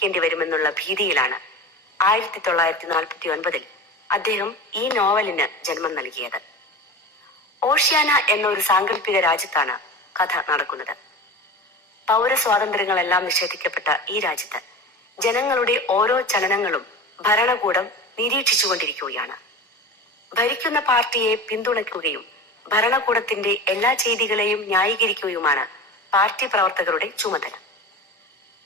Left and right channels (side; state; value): both; normal; correlation 0.31